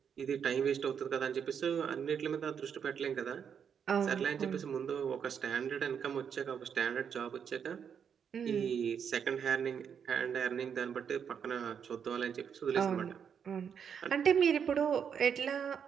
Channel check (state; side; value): quieter; left; 7.5 dB